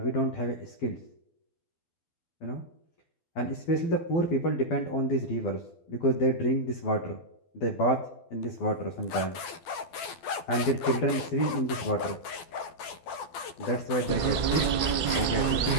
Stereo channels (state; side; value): late; right; 12 ms